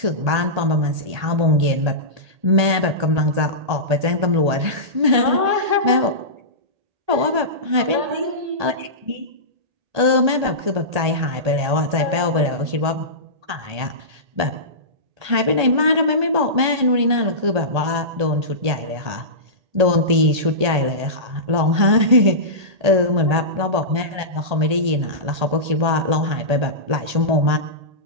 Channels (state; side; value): late; left; 1.8 ms